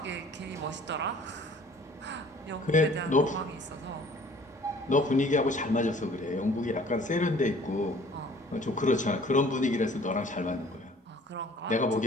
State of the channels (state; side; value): normal; both; correlation 0.52